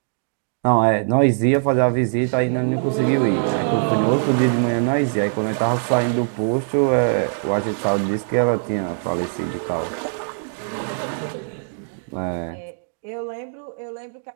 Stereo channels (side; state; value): left; silent; digital silence